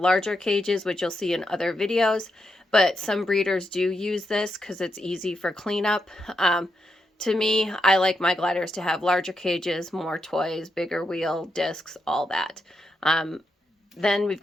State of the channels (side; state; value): both; normal; correlation 0.83